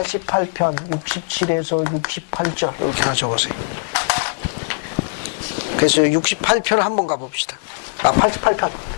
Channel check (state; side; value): silent; right; digital silence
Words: 67에서 68절 이렇게 하나 적으세요. 그래서 68편을 한번 가봅시다.